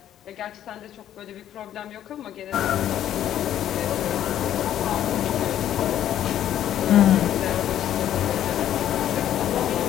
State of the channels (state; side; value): quieter; right; 11.2 dB